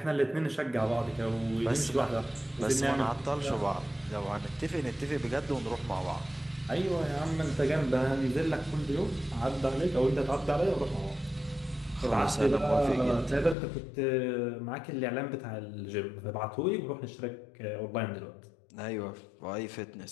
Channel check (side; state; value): right; drops out; at 13.6 s